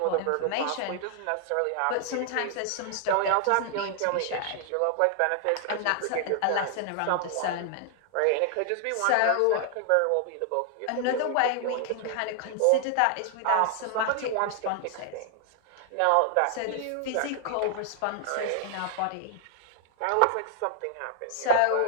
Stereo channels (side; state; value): both; different; correlation 0.00